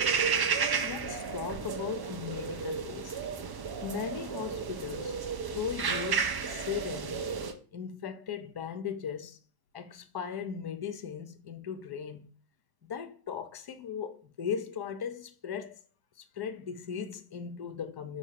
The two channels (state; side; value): late; left; 1.1 ms